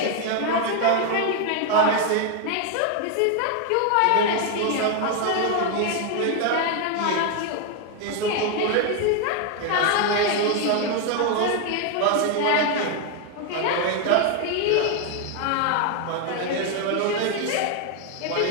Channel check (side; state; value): both; different; correlation 0.01